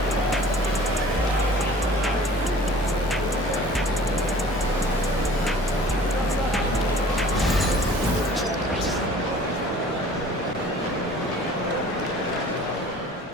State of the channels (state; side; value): normal; both; correlation 0.47